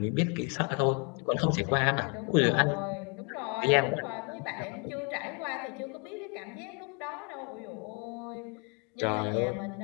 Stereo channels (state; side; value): quieter; right; 34.8 dB